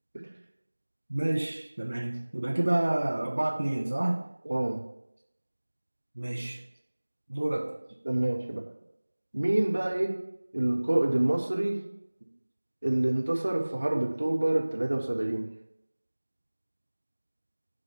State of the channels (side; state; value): both; inverted; correlation -1.00